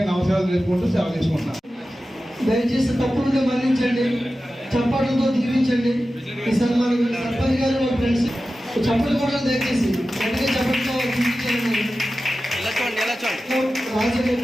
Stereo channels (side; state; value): both; normal; correlation 0.94